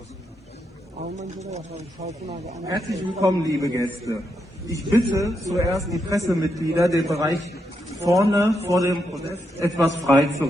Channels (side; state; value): both; normal; correlation 0.82